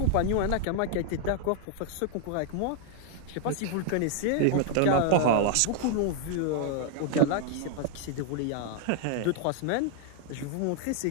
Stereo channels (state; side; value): different; both; correlation -0.01